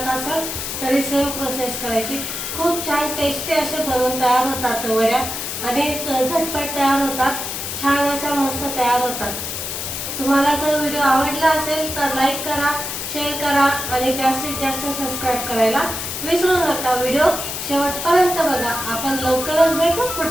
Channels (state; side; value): noise; left; hiss, 5 dB below the sound